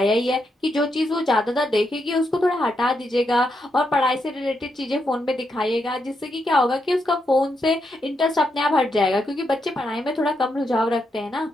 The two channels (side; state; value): both; normal; correlation 0.82